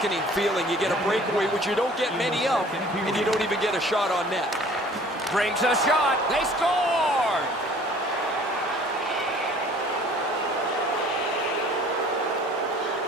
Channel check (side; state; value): both; normal; correlation 0.51